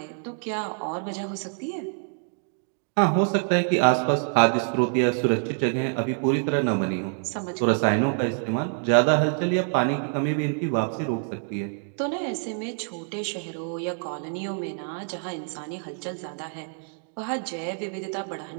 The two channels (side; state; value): left; silent; 56 dB below the other